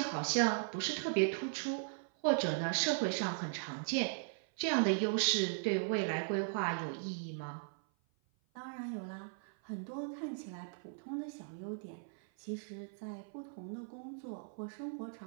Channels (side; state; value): left; silent; 52 dB below the other